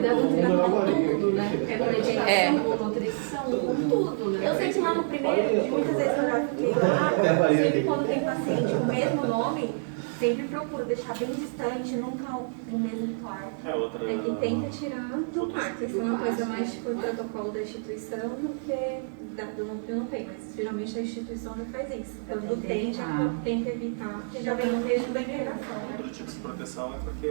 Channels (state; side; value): silent; left; 59 dB below the other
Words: com tudo, né? É. Com nutrição, com tudo, né? Eu sei que lá no primeiro, muitas vezes eu já fiquei lá, sempre quando tem paciente com o mesmo nome, sempre procuro deixar bem distante, nunca no mesmo quarto. E tenta tirar do quarto. Isso é uma coisa mais tipo o protocolo da instituição do que do núcleo não tem, mas geralmente a instituição já faz isso. Quando tem, já tenta evitar, porque já vem no mesmo da interação. Outro tipo de proteção é porque